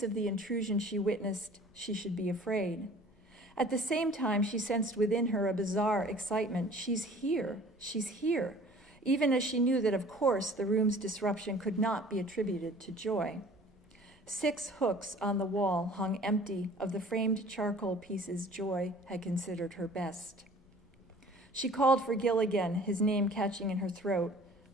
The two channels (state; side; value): normal; both; correlation 0.48